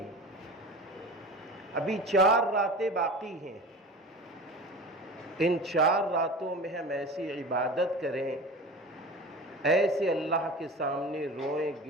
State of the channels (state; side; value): normal; both; correlation 0.34